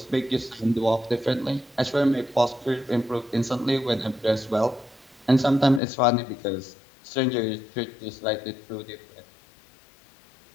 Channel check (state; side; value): drops out; right; at 5.8 s